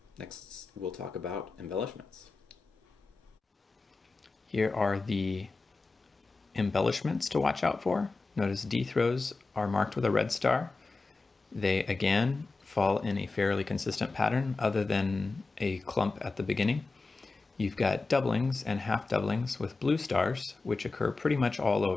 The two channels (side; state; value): right; quieter; 3.8 dB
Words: next we'll talk about embellishments. Here are the embellishments to watch out for. Notice D throws are marked with a red star. They again fall in a fairly consistent pattern other than a clump at the beginning. You've got doublings and half doublings with blue stars, which occur pretty much all